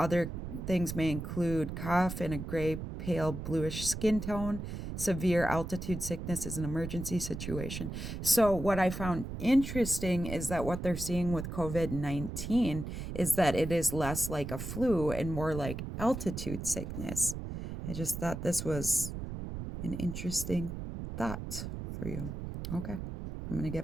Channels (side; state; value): right; noise; rumble, 6 dB below the sound